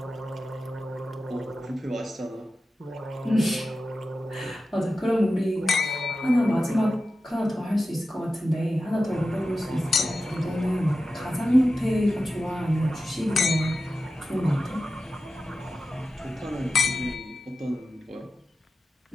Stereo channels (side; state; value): both; normal; correlation 0.93